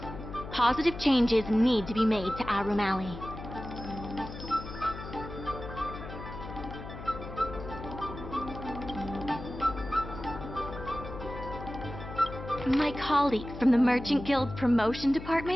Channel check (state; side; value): noise; left; hum, 11 dB below the sound